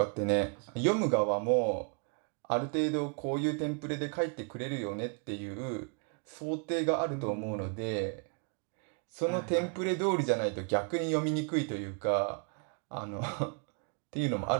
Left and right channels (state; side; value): quieter; left; 38.7 dB